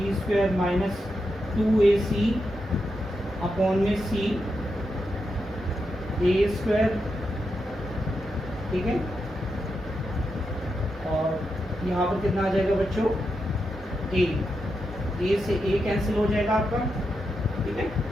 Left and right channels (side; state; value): both; normal; correlation 0.86